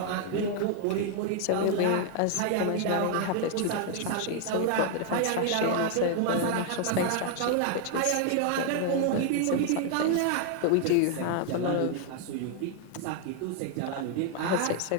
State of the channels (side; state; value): both; different; correlation 0.00